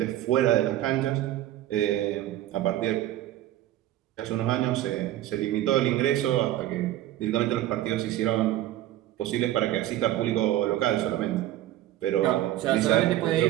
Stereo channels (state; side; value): quieter; left; 13.8 dB